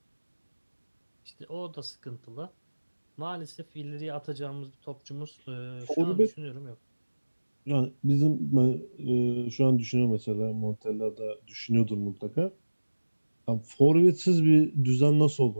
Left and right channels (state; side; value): inverted; both; correlation -1.00